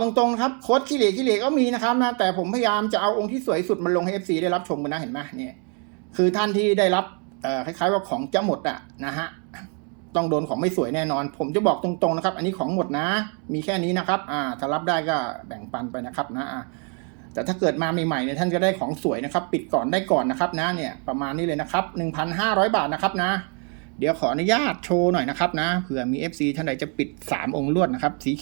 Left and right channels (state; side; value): quieter; left; 38.8 dB